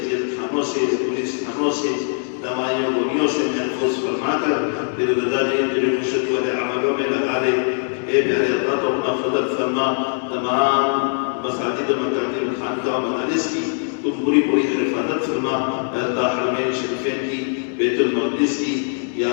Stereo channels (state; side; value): silent; right; 63 dB below the other